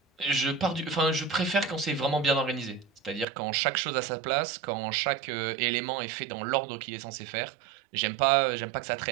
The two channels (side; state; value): left; drops out; at 3.2 s